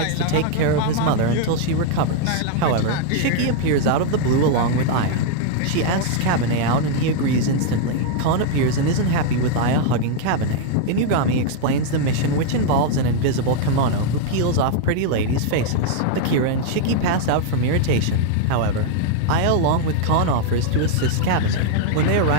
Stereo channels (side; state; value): both; different; correlation 0.00